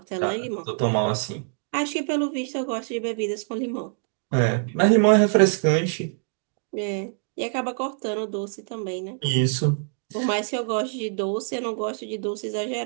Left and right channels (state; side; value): silent; left; digital silence